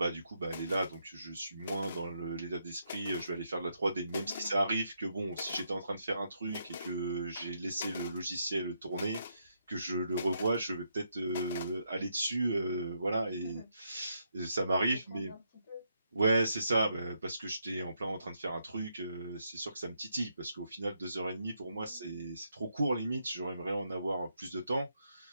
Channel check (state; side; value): inverted; both; correlation -0.78